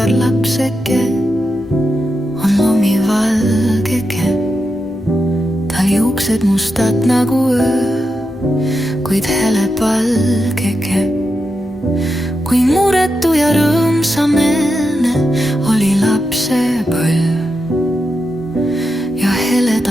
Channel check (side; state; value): both; normal; correlation 0.87